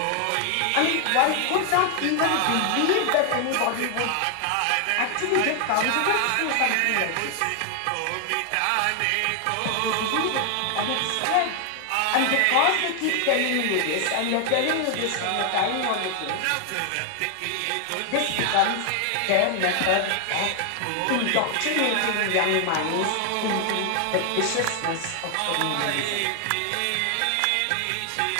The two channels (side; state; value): both; different; correlation 0.00